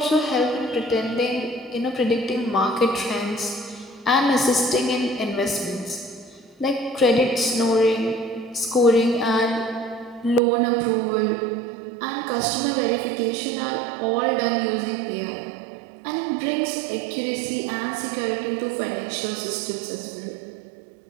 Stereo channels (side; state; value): left; drops out; at 10.4 s